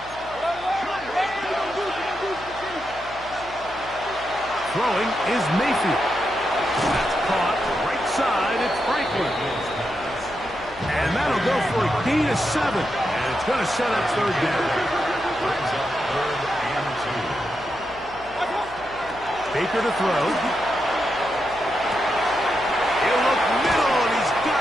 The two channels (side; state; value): left; noise; hum, 20 dB below the sound